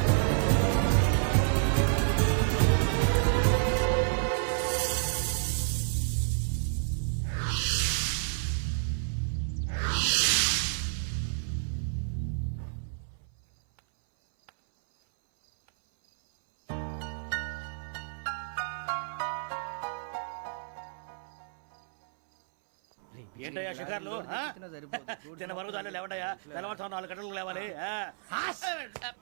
ఏంటయ్యా షికార్లు తిన్న వరకు చాలు లేవడయ్యా తెల్లవారుతో 4 గంటలకు లేవాలి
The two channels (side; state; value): left; silent; 58 dB below the other